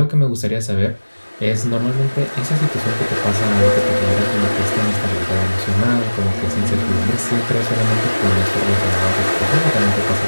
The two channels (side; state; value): both; inverted; correlation -1.00